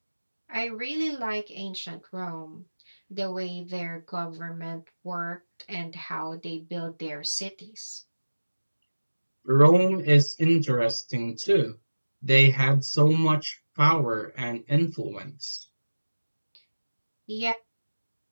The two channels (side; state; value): both; inverted; correlation -1.00